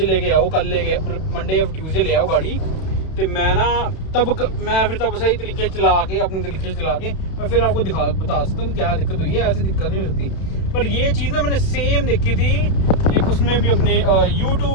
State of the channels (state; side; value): late; right; 32 ms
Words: लेके आओ, कल लेके मंडे या ट्यूसडे ले आओ गाड़ी। तो मैं ना मैं फिर तब सही तरीके चला के अपने तरीके से चला के मैं फिर आपको बता सकता हूँ क्या दिक्कत हुई है। ऐसी दिक्कत नहीं हो सकती। पर ये चीज़ ना मैंने सेम देखी थी एक उसमें भी अपने